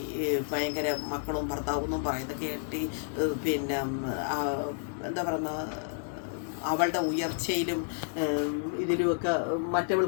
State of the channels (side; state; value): right; silent; digital silence